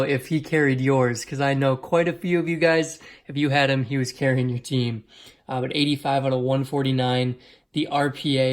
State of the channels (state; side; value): identical; both; correlation 1.00